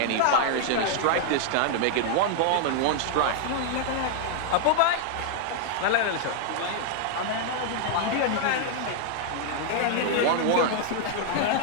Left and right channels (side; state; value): both; different; correlation 0.00